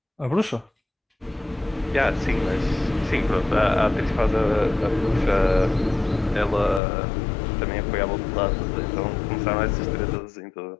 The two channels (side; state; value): right; drops out; at 6.8 s